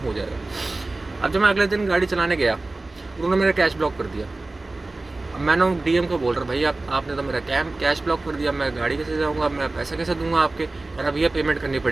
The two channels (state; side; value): quieter; left; 3.1 dB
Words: हो जाएगा। अब जब मैं अगले दिन गाड़ी चलाने गया, उन्होंने मेरा कैश ब्लॉक कर दिया। अब मैंने डीएम को बोल रहा भाई आपने तो मेरा कैश ब्लॉक कर दिया, मैं गाड़ी कैसे जाऊँगा, मैं पैसा कैसे दूंगा आपके। कह रहा भैया पेमेंट करनी